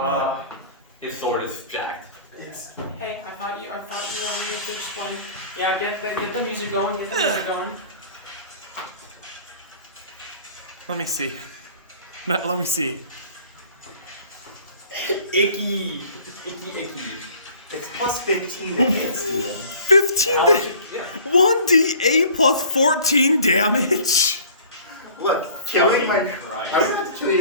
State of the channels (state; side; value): inverted; both; correlation -0.49